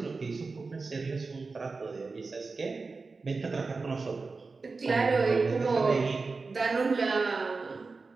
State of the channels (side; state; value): left; quieter; 4.1 dB